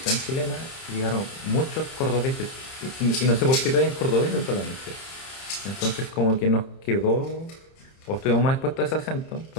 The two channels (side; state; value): right; late; 30 ms